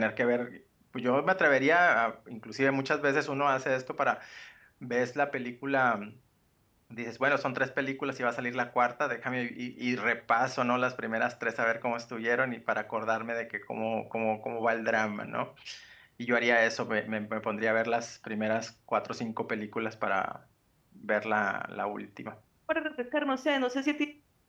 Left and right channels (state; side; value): identical; both; correlation 1.00